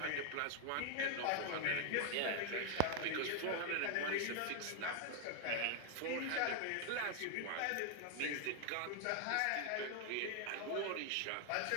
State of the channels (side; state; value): both; different; correlation 0.00